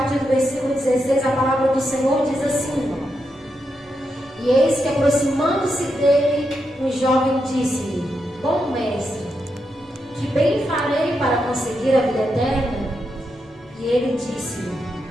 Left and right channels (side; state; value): both; normal; correlation 0.84